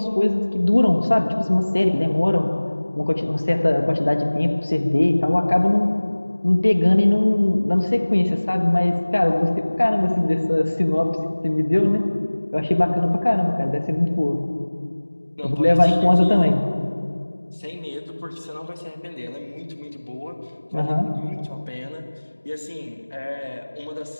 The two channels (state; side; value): inverted; both; correlation -1.00